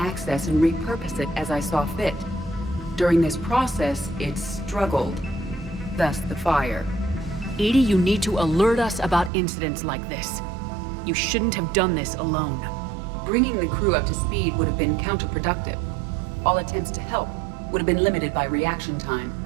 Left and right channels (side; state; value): left; drops out; at 9.3 s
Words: and repurpose it as I saw fit. During this process, it struggled. Thus the fire. Edie, you need to alert us about incidents like this. You shouldn't have done this alone. Bringing the crew up to speed would have been counterproductive. All attempts to help would have been limited by reaction time.